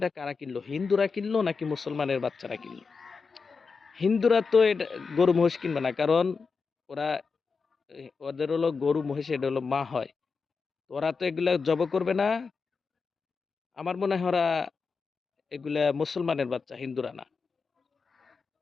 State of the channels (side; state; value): right; quieter; 4.9 dB